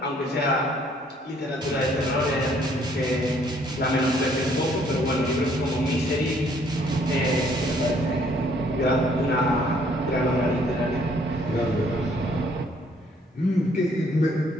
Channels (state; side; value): normal; both; correlation 0.64